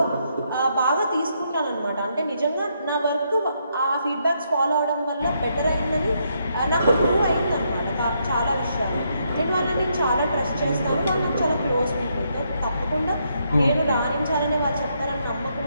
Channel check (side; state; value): both; inverted; correlation -0.76